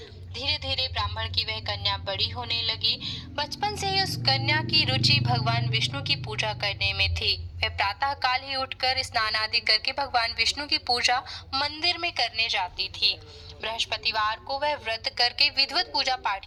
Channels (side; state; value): both; identical; correlation 1.00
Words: धीरे धीरे ब्राह्मण की वह कन्या बड़ी होने लगी। बचपन से ही उस कन्या की रुचि भगवान विष्णु की पूजा करने में थी। वह प्रातः काल ही उठकर स्नान आदि करके भगवान विष्णु की पूजा मंदिर में करने जाती थी। बृहस्पतिवार को वह व्रत करके विधिवत पूजा पाठ